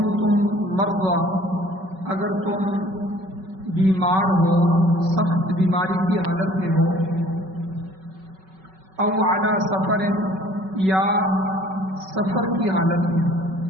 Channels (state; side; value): late; left; 5.3 ms